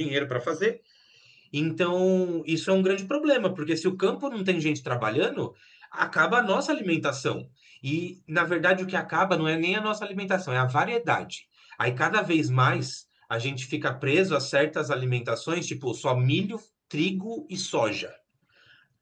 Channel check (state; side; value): identical; both; correlation 1.00